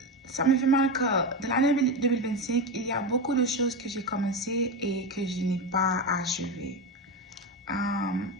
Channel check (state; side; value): normal; both; correlation 0.17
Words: ça me fait mal que dans l'année 2025, il y a beaucoup de choses que j'ai commencées et que je n'ai pas achevées.